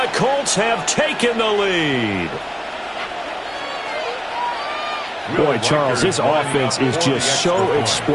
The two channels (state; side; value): identical; both; correlation 1.00